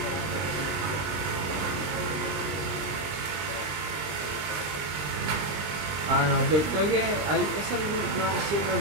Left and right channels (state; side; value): late; left; 20 ms